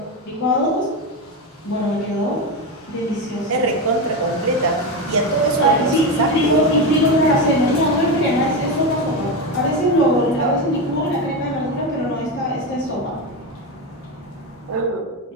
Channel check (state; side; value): normal; both; correlation 0.15